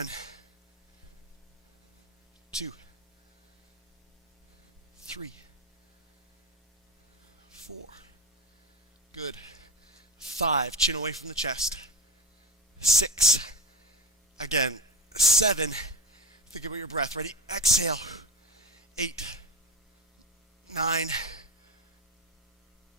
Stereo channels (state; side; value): normal; both; correlation 0.23